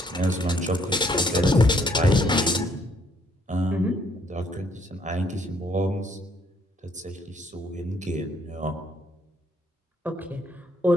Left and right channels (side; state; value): both; normal; correlation 0.67